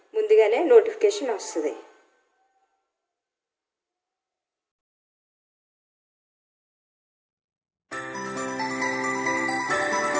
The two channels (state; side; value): identical; both; correlation 1.00